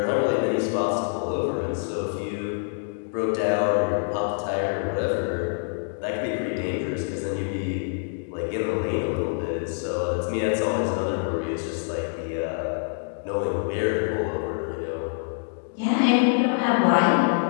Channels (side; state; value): right; silent; digital silence